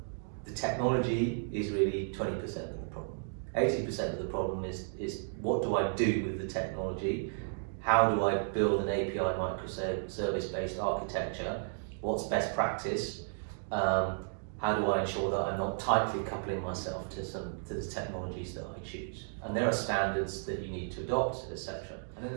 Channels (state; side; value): silent; left; digital silence